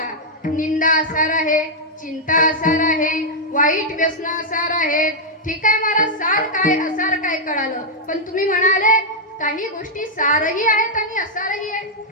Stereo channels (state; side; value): normal; both; correlation -0.04